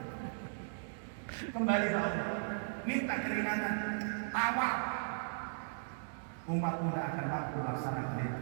Kembali ke Allah. Minta keringanan. Tawar. Umatmu tidak akan mampu melaksanakan itu.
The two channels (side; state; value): left; silent; digital silence